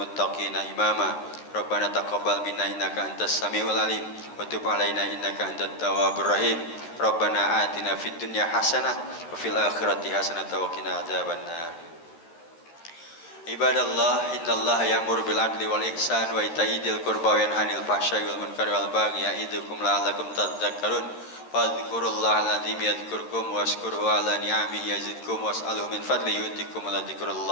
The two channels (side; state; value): right; late; 13 ms